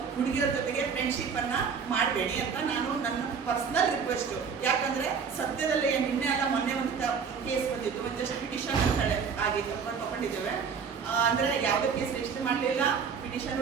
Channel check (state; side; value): quieter; left; 6.2 dB